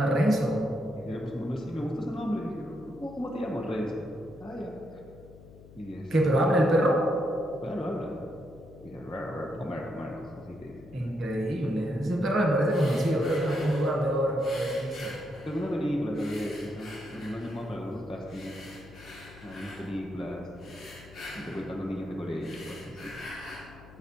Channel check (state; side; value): noise; left; hum, 19 dB below the sound